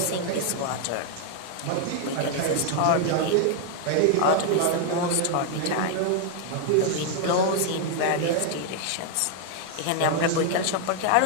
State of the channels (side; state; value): both; different; correlation 0.00